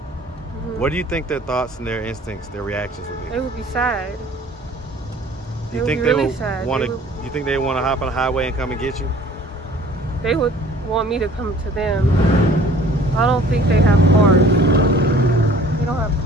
what do you think their thoughts and their instincts, their reactions would be? They would be sad. Do you think they would want to? You think they want to hop on a highway and come and get you? They would want me to come to them. I don't think they have cars. They don't have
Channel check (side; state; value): both; normal; correlation 0.50